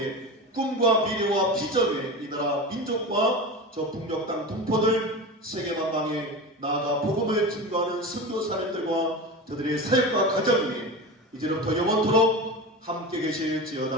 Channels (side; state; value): both; normal; correlation 0.27